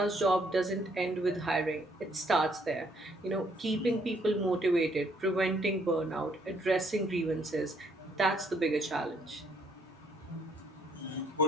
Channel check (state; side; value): normal; both; correlation 0.67